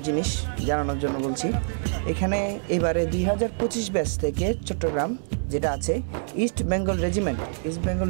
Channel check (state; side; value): silent; left; 61 dB below the other